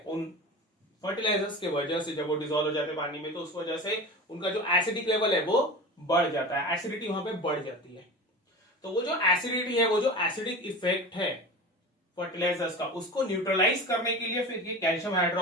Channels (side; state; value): both; normal; correlation 0.31